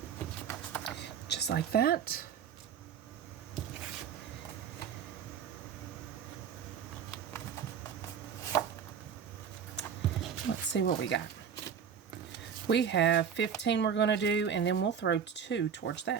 Just like that. Let's see what we got. We have 15 we're going to do, and then we'll throw 2 towards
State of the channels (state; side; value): quieter; left; 7.5 dB